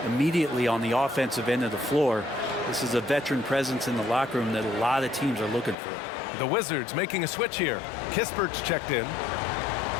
immediately on the offensive end of the floor. This is a veteran presence in the locker room that a lot of teams are looking for. The Wizards making a switch here. Kispert's checked in.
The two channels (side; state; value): right; drops out; at 5.8 s